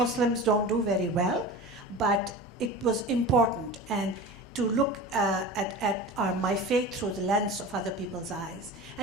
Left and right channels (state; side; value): normal; both; correlation 0.33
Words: don't do very well, but it was important, and to look at my faith through the lens of other people's eyes,